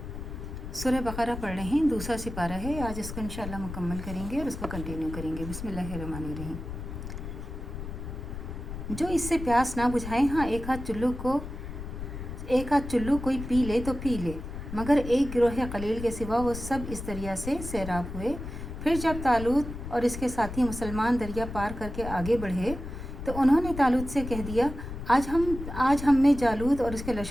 सूरह बकरा पढ़ रहे हैं, दूसरा सिपारा है। आज इसको इंशाल्लाह मुकम्मल करेंगे और उसको कंटिन्यू करेंगे। बिस्मिल्लाहिर्रहमानिर्रहीम। जो इससे प्यास ना बुझाए, हाँ एक हाथ चुल्लू कोई पी ले तो पी ले, मगर एक गिरोह कलील के सिवा वो सब इस दरिया से सैराब हुए। फिर जब तालूत और इसके साथी मुसलमान दरिया पार करके आगे बढ़े तो उन्होंने तालूत से कह दिया, आज हम में जालूत और उसके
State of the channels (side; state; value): left; noise; rumble, 8 dB below the sound